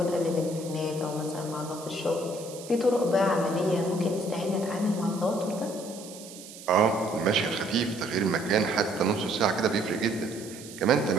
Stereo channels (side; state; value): right; noise; hiss, 16 dB below the sound